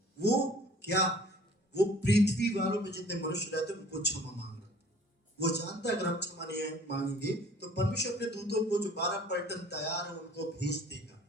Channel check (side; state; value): both; normal; correlation 0.51